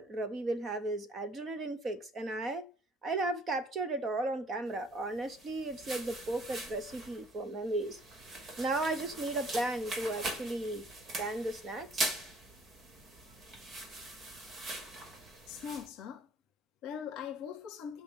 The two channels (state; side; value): normal; both; correlation 0.57